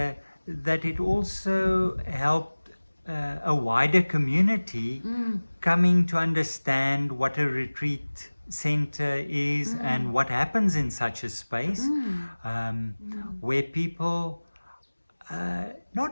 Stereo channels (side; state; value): both; inverted; correlation -1.00